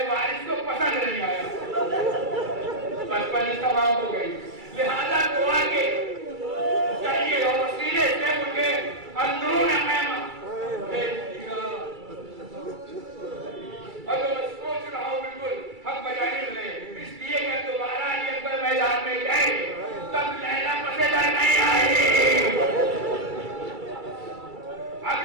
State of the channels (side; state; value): left; late; 2.3 ms